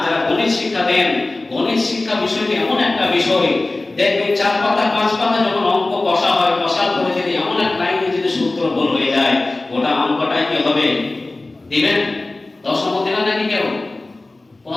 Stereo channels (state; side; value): quieter; right; 3.0 dB